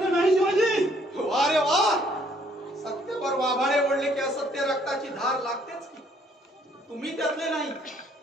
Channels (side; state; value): both; normal; correlation 0.65